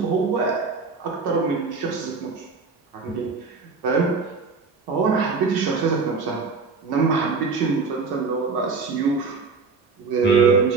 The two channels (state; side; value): quieter; left; 4.6 dB